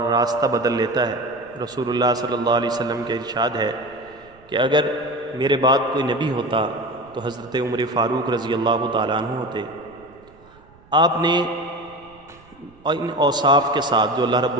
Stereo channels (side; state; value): right; noise; rumble, 27 dB below the sound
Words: راستہ بدل لیتا ہے، رسول اللہ صلی اللہ علیہ وسلم کے ارشاد ہے کہ اگر میرے بعد کوئی نبی ہوتا تو حضرت عمر فاروق رضی اللہ تعالیٰ عنہ ہوتے۔ آپ نے ان اوصاف کے ساتھ جو اللہ رب